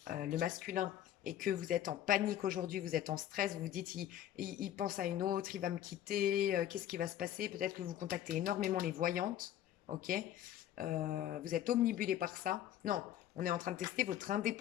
le masculin, et que vous êtes en panique aujourd'hui, vous êtes en stress, vous vous dites, il pense à une autre, il va me quitter, qu'est-ce qui va se passer? Peut-être que vous contactez énormément les voyantes, ok? Vous êtes omnibulé par ça. Non, on est en train de tester votre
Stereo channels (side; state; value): right; quieter; 11.5 dB